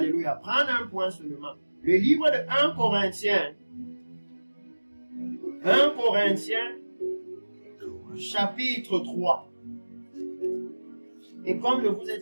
Prendre un point seulement. Le livre de 1 Corinthiens. 1 Corinthiens, chapitre 3. Et comme je vous ai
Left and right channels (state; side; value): inverted; both; correlation -1.00